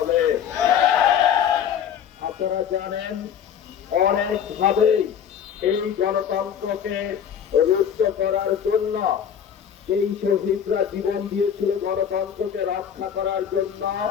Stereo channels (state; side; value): quieter; right; 8.4 dB